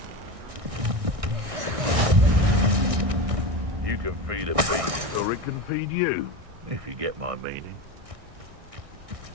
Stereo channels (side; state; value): left; late; 1.6 ms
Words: You can feed a beast, or it can feed you, if you get my meaning.